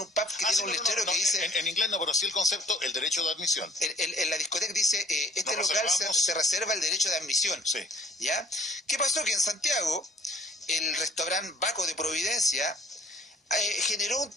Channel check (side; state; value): both; normal; correlation 0.56